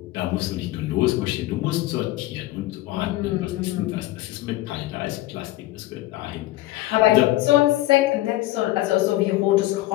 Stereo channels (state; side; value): quieter; right; 16.8 dB